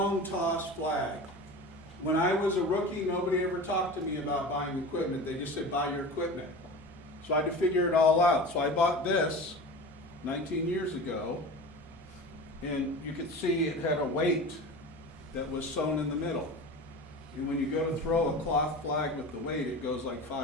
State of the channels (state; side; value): normal; both; correlation 0.33